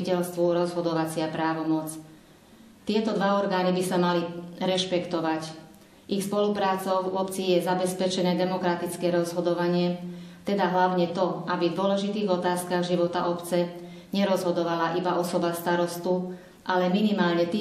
rozhodovacia právomoc. Tieto dva orgány by sa mali rešpektovať. Ich spoluprácou v obci je zabezpečené demokratické rozhodovanie, teda hlavne to, aby v dôležitých otázkach života obce nerozhodovala iba osoba starostu, ale minimálne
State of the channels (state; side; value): identical; both; correlation 1.00